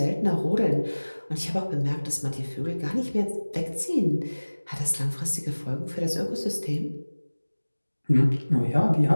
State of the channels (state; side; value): inverted; both; correlation -1.00